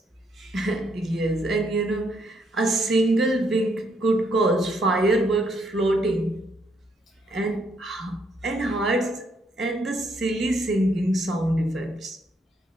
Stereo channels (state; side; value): normal; both; correlation 0.73